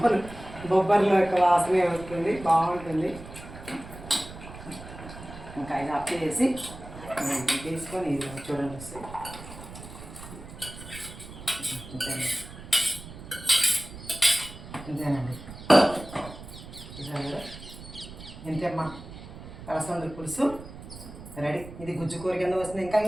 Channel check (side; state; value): right; noise; rumble, 14 dB below the sound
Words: బొబ్బర్ల యొక్క వాసనే వస్తుంది, బాగుంటుంది. ఇంకా ఇది అప్ చేసి తీసుకొని ఇది చూడండి వస్తాయి. ఇంతేనండి, చూసాను కదా, ఇంతేమ్మా అలసంద పులుసు రెడీ. ఇది గుజ్జు కూర కింద వస్తుంది. ఇంకా